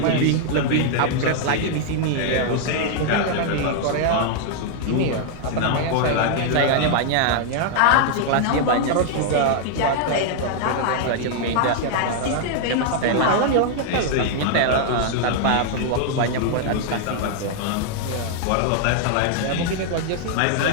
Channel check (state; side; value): different; both; correlation -0.01